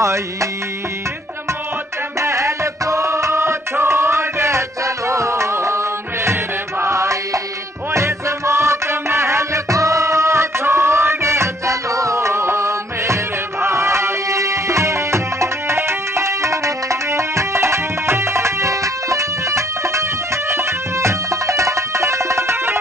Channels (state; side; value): normal; both; correlation 0.65